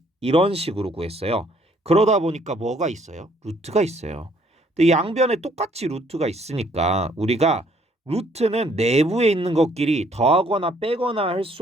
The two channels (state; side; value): normal; both; correlation 0.64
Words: 이런 식으로 구했어요. 그러다 보니까 뭐가 있어요? 루트가 있어요. 근데 양변에 똑같이 루트가 있으니까 우리가 루트는 내부에 있는 것끼리 더하거나 빼거나 할